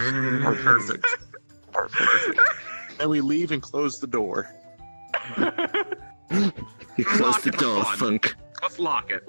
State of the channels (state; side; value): inverted; both; correlation -1.00